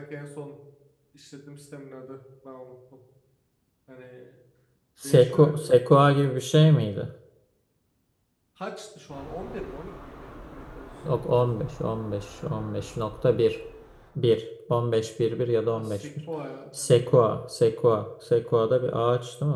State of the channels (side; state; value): both; identical; correlation 1.00